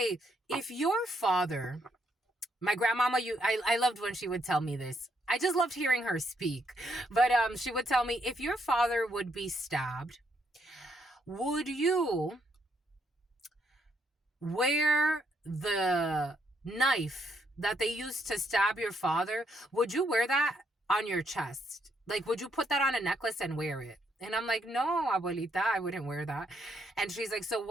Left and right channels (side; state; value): both; normal; correlation 0.74